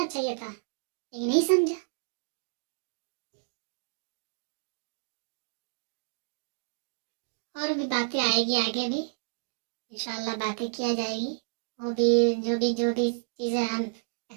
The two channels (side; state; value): left; silent; digital silence